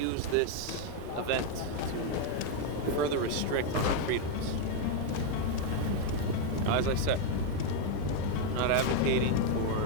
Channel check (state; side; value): different; both; correlation 0.01